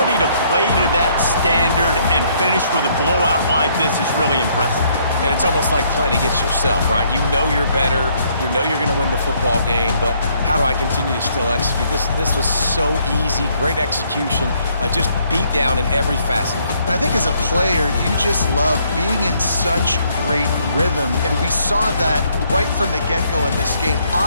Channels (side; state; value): both; inverted; correlation -0.68